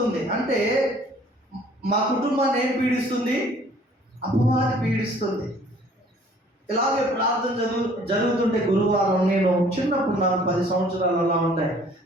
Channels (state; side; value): normal; both; correlation 0.55